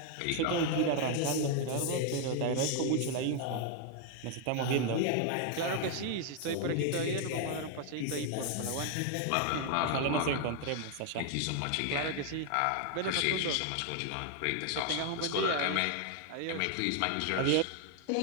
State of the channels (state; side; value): different; both; correlation 0.00